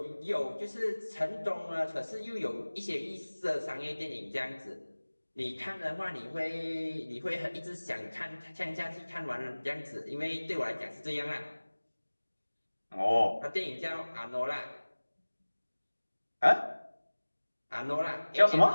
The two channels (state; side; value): inverted; both; correlation -1.00